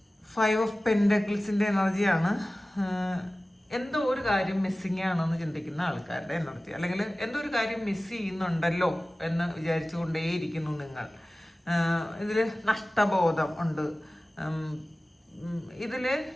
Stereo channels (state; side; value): normal; both; correlation 0.97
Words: ഫൈവ് ഓഫ് പെൻഡക്കിൾസിന്റെ എനർജിയാണ്. എന്തോ ഒരു കാര്യം മിസ്സിങ് ആണെന്ന് ചിന്തിക്കുന്ന ആൾക്കാരുടെ എനർജി, അല്ലെങ്കിൽ എന്തോ ഒരു കാര്യം മിസ് ചെയ്യുന്നുണ്ടല്ലോ എന്ന് വിചാരിച്ചുകൊണ്ടേയിരിക്കുന്നു നിങ്ങൾ. ഇതിൽ നഷ്ടബോധം ഉണ്ട്. ഇതിൽ